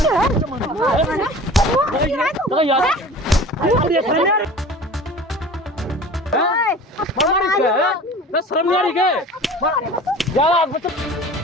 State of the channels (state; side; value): normal; both; correlation 0.41